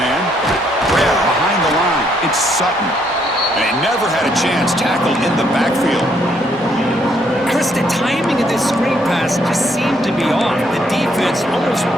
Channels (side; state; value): both; normal; correlation 0.71